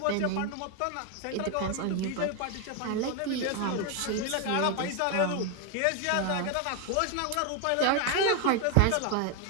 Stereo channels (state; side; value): different; both; correlation 0.01